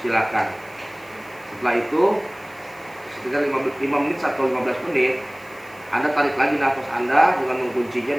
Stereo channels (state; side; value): noise; right; hiss, 26 dB below the sound